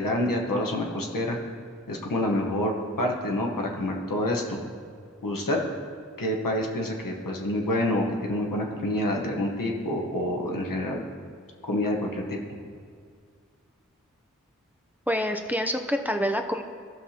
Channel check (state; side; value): normal; both; correlation 0.42